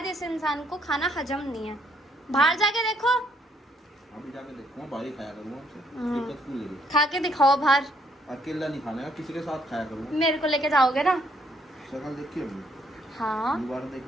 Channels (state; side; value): normal; both; correlation 0.69